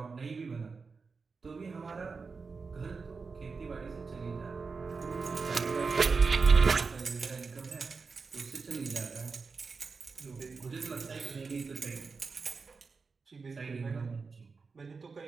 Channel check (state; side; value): quieter; left; 4.7 dB